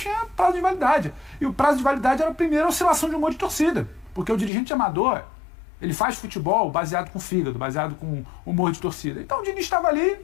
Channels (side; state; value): right; drops out; at 4.5 s